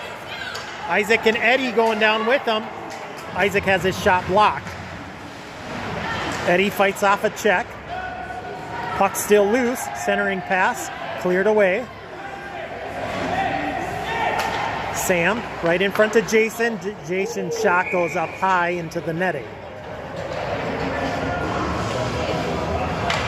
Isaac and Eddie going down with them. Isaac has his shot blocked. Eddie fights off a check. Puck still loose. Centering pass. Cleared away. Sam right in front of Jason. Jason's shot goes up high into the netting.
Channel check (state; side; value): identical; both; correlation 1.00